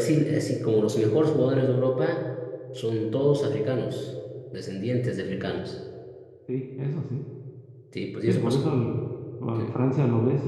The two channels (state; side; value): identical; both; correlation 1.00